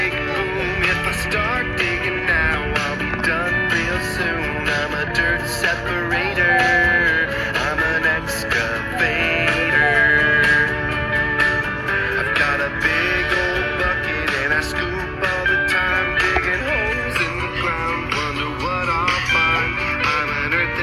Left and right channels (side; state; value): both; identical; correlation 1.00